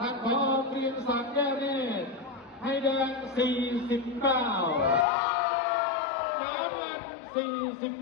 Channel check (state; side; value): drops out; right; at 5.1 s